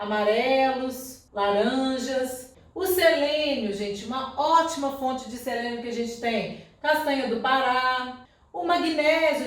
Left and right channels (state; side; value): identical; both; correlation 1.00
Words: laranjas. O selênio, gente, uma ótima fonte de selênio que a gente tem. Castanha do Pará. O magnésio